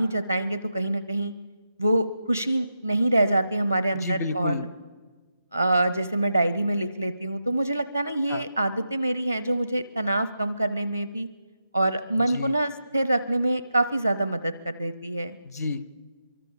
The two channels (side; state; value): both; inverted; correlation -0.87